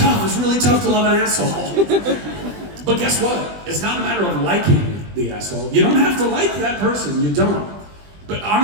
It's really tough to love an asshole. But guess what? It's not a matter of liking the asshole. You don't have to like that person. You don't. But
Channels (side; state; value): left; late; 20 ms